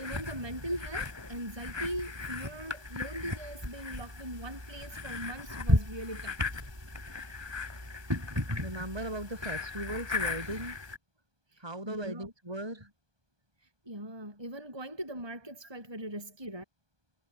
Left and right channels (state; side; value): late; left; 1.2 ms